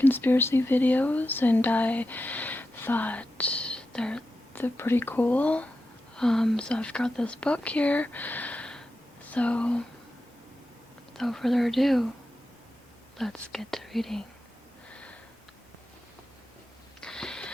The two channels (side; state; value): both; normal; correlation 0.90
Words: videos and I thought they're pretty cool. So I've got this book here. So without further ado, let's get to reading.